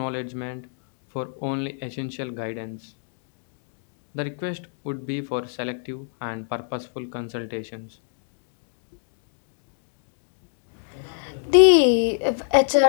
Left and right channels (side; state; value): right; silent; digital silence